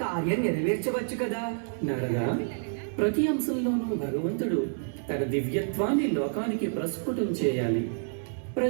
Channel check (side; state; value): left; silent; 57 dB below the other